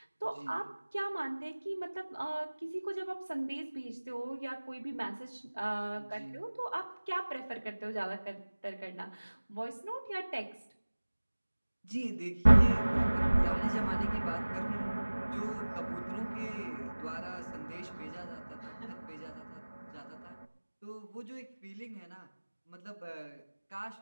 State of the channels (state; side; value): inverted; both; correlation -1.00